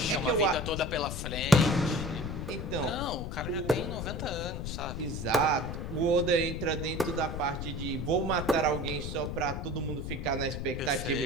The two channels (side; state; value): left; noise; rumble, 5 dB below the sound